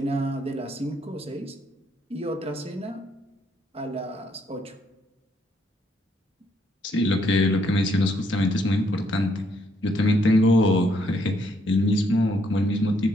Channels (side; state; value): both; normal; correlation 0.72